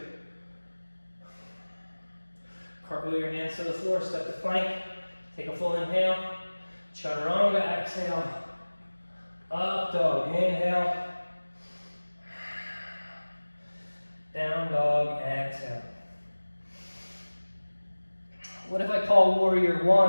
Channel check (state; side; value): inverted; both; correlation -1.00